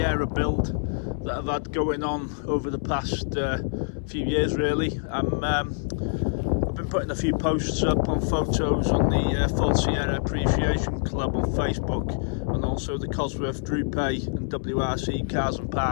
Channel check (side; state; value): right; silent; 61 dB below the other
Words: build that I've had going on over the past few years really. I've been putting a few posts up on photos on the Full Sierra Appreciation Club on Facebook, and also the Cosworth Duratec and WRC Cars and